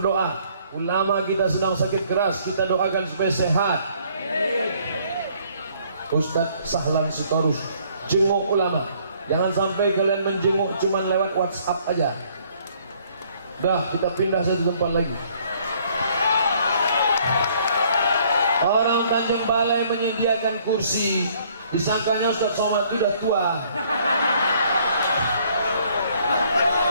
Ulama kita sedang sakit keras, kita doakan supaya sehat. Ustadz Sahlan Sitorus, jenguk ulama. Jangan sampai kalian menjenguk cuma lewat WhatsApp aja. Dah, kita pindah satu tempat lagi. Orang Tanjung Balai menyediakan kursi, disangkanya Ustaz Somad itu sudah tua.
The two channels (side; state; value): both; inverted; correlation -0.62